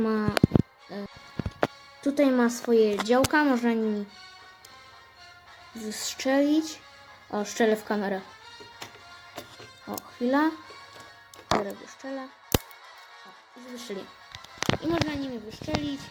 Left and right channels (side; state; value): both; identical; correlation 1.00